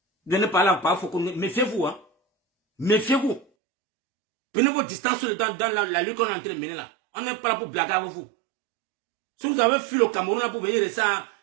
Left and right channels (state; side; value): drops out; left; at 3.5 s